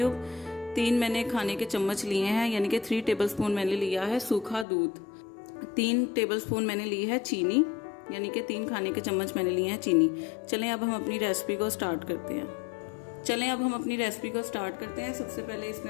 3 मैंने खाने के चम्मच लिए हैं, यानी कि 3 टेबलस्पून मैंने लिया है सूखा दूध। 3 टेबलस्पून मैंने ली है चीनी, यानी कि 3 खाने के चम्मच मैंने लिए हैं चीनी। चलें अब हम अपनी रेसिपी को स्टार्ट करते हैं। सबसे पहले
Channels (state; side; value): drops out; right; at 4.7 s